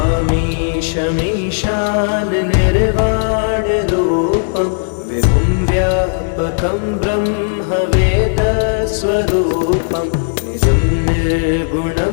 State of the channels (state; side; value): silent; right; digital silence